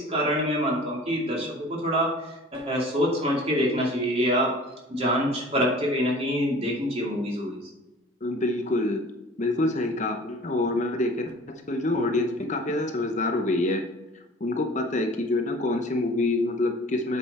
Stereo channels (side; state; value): both; normal; correlation 0.45